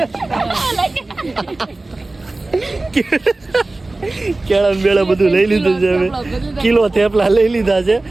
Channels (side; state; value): left; quieter; 3.0 dB